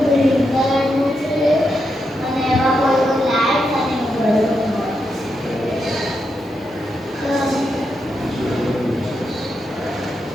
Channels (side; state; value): both; normal; correlation 0.84